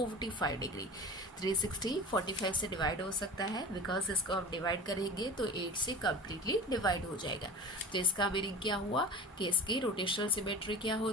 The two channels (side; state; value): both; normal; correlation 0.34